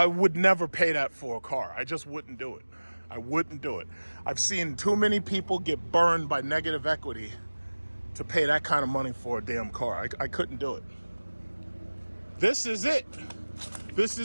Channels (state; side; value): inverted; both; correlation -1.00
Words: would never pay that for a car. I just wouldn't do it. I wouldn't do it. I've seen too many people get burned by negative equity to pay that kind of money for a damn car. I couldn't do it. This is it. This